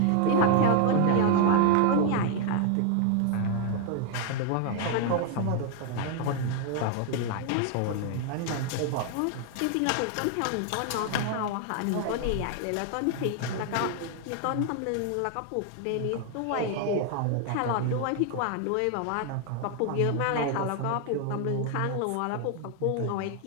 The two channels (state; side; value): different; both; correlation 0.00